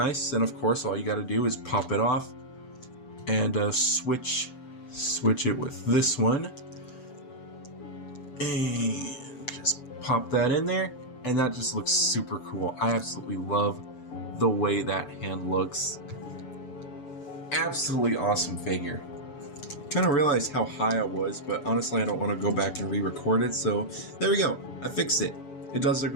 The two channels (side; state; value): right; late; 7.0 ms